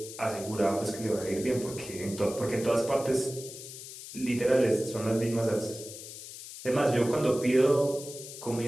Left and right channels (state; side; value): noise; left; hiss, 12 dB below the sound